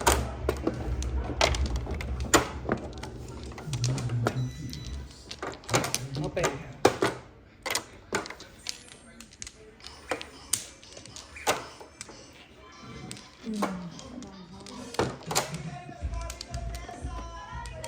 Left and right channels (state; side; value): identical; both; correlation 1.00